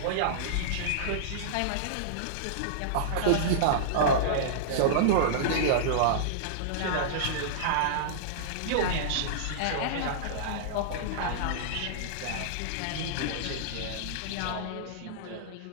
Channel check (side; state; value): both; different; correlation -0.02